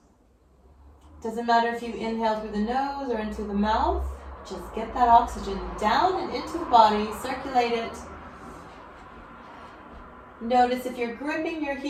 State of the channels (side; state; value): both; identical; correlation 1.00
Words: Doesn't matter if you inhale through the nose or into the mouth. Just get that oxygen down and into the body, circulate it. Notice if you're gripping your